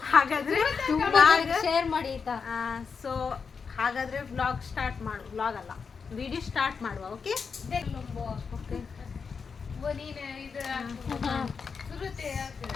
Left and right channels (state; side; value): quieter; right; 5.6 dB